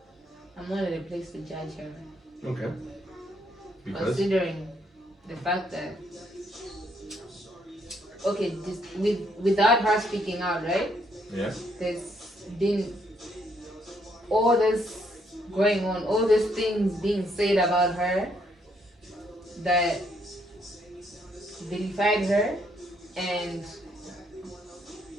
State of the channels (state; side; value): normal; both; correlation 0.72